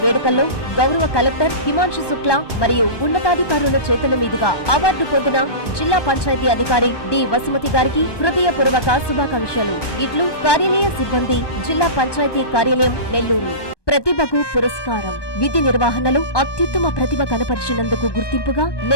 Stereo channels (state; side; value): late; right; 1.2 ms